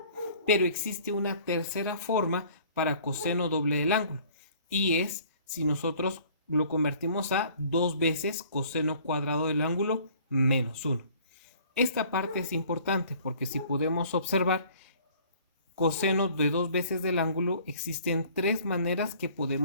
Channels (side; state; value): both; inverted; correlation -0.53